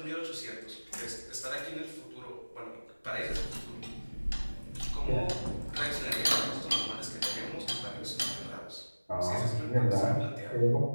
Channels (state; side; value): inverted; both; correlation -1.00